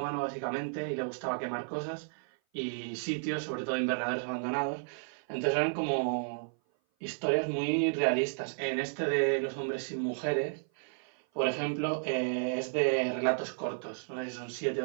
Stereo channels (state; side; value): silent; left; 55 dB below the other